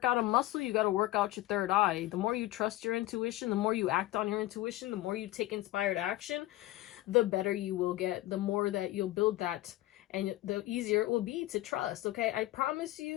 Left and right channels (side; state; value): right; quieter; 17.0 dB